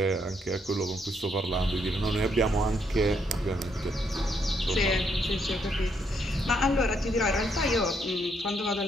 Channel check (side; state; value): both; normal; correlation 0.74